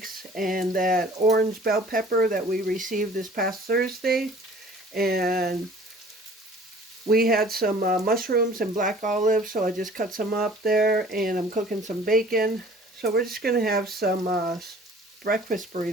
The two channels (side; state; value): both; normal; correlation 0.50